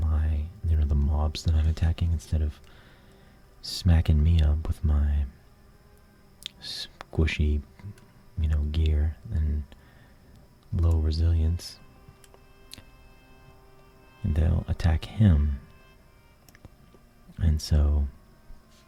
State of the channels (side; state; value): both; identical; correlation 1.00